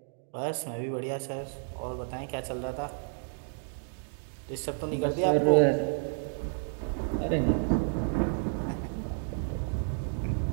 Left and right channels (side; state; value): left; silent; digital silence